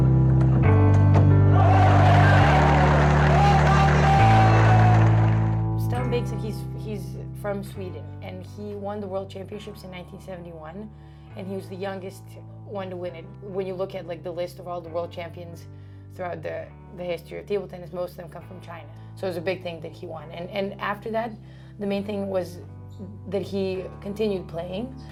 Stellan Bengtsson, he's from Sweden, and he won the World Championships in 1971, and he was the youngest one to win it. When you look at like the list of all the world champions throughout the history of table tennis, most of them come from China. So it was a big thing that he won. And after that, the main thing was that he continued playing.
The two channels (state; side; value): identical; both; correlation 1.00